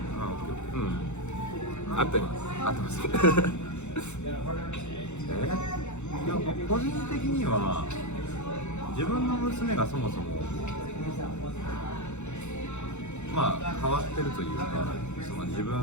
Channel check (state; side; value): late; right; 0.83 ms